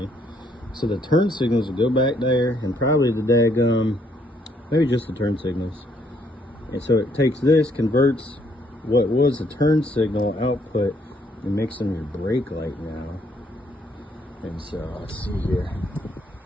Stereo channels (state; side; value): normal; both; correlation 0.69